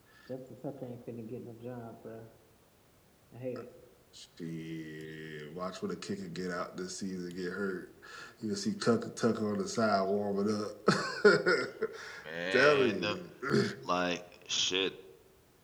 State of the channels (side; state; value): both; identical; correlation 1.00